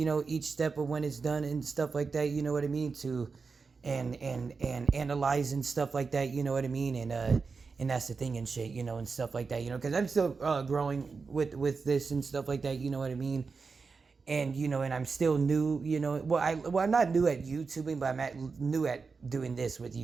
know, each step of when it's done and stuff like that, you know what I mean, to and analyze and stuff like that, you know what I mean, and that's the thing and shit, you know, and stuff like that, you know, because I'm still growing with this and stuff like that, you know what I mean, and you know, and I'm still new, you know, I'm not new at YouTubing, but I'm new at doing this with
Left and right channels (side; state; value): left; quieter; 4.8 dB